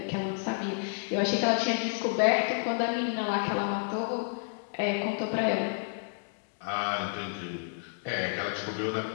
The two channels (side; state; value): right; silent; digital silence